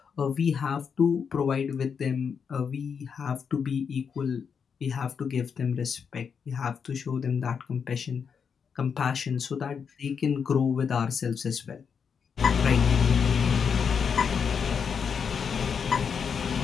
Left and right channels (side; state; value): right; quieter; 6.5 dB